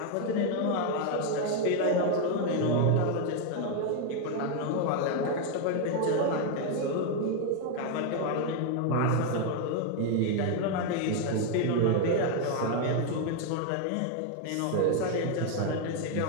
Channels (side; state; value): both; different; correlation 0.01